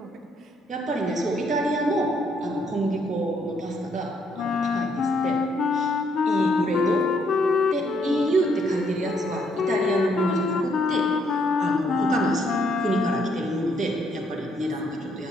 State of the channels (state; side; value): normal; both; correlation 0.71